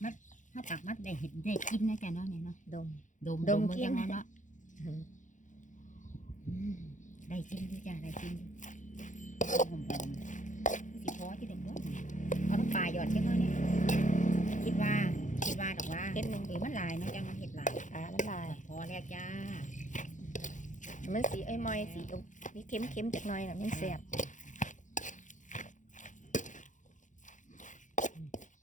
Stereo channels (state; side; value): late; right; 0.36 ms